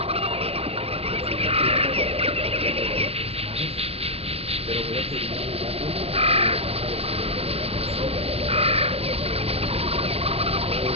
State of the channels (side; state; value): left; late; 0.29 ms